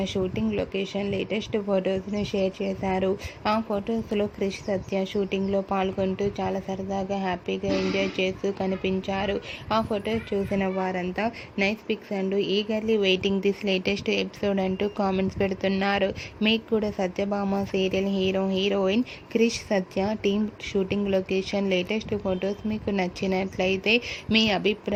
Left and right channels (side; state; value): both; identical; correlation 1.00